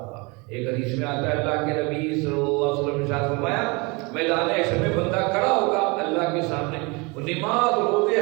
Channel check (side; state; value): left; quieter; 27.9 dB